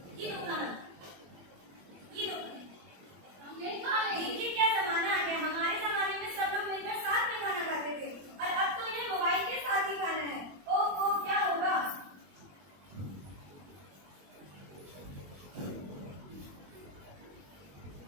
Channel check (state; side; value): late; left; 21 ms